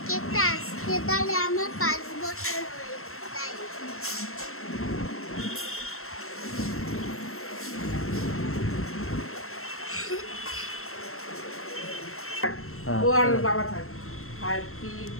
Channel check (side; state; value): right; late; 0.62 ms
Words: কেকটা আজকে তাহলে আমার 5 বছর হয়ে তাই। ও আর বাবা থাক। Happy